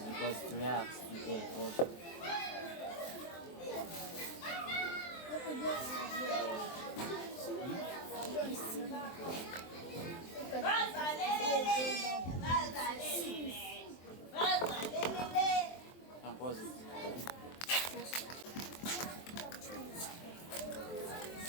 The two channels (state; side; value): late; right; 23 ms